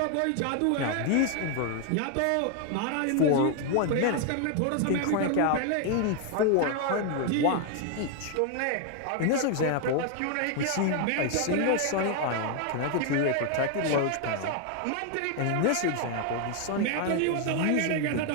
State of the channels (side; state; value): both; different; correlation 0.00